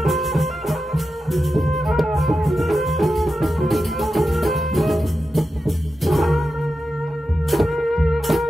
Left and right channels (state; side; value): normal; both; correlation 0.90